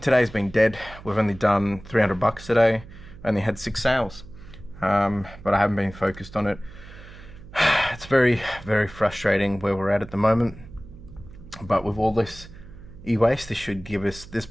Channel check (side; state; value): right; noise; hum, 18 dB below the sound